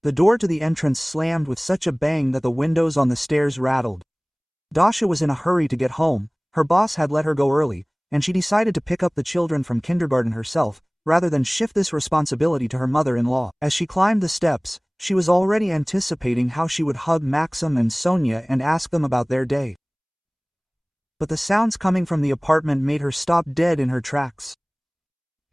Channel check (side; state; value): both; identical; correlation 1.00